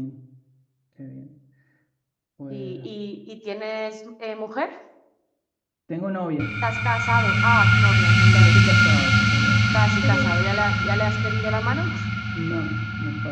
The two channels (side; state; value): both; identical; correlation 1.00